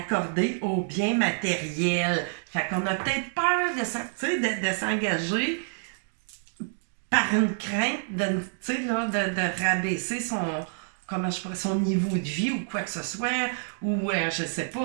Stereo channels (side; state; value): left; silent; digital silence